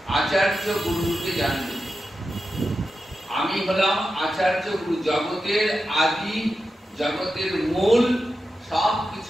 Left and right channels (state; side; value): normal; both; correlation 0.90